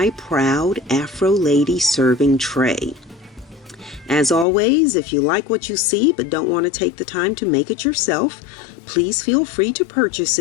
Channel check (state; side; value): drops out; right; at 4.5 s